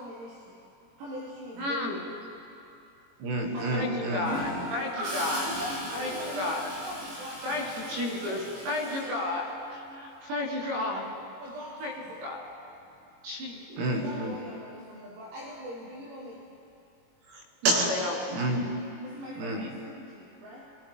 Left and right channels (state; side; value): late; left; 22 ms